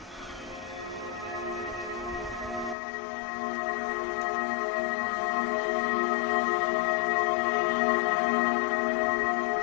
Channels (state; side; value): drops out; right; at 2.8 s